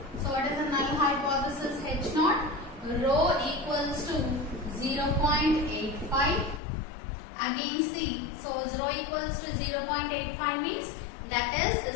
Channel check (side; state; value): right; drops out; at 6.6 s